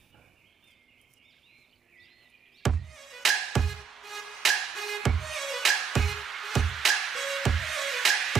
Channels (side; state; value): left; quieter; 6.4 dB